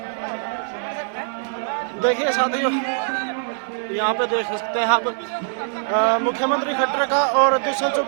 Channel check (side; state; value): left; silent; digital silence